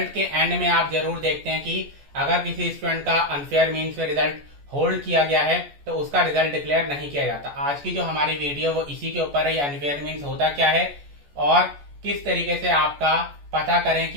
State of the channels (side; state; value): left; late; 14 ms